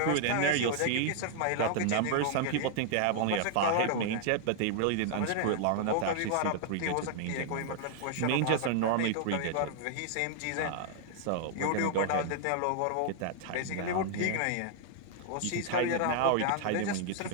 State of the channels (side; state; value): both; different; correlation 0.00